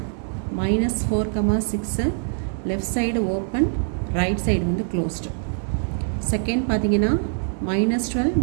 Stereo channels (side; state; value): left; silent; digital silence